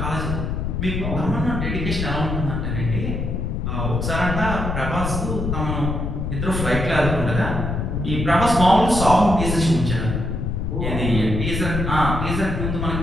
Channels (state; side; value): noise; left; rumble, 2 dB below the sound